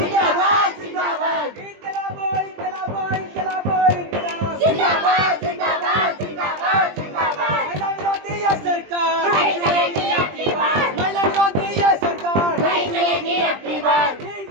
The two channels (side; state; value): left; late; 20 ms